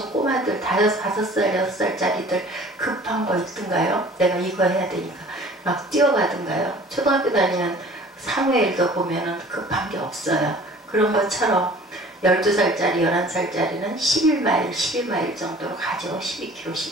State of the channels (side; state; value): both; normal; correlation 0.48